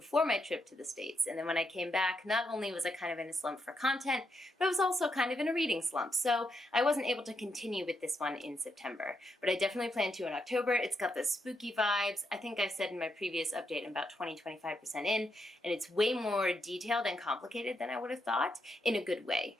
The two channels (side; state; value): both; normal; correlation 0.81